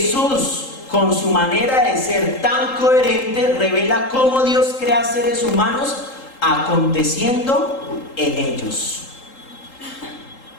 con su manera de ser tan coherente, revela cómo Dios crea seres humanos aconteciendo en ellos.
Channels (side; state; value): right; late; 3.8 ms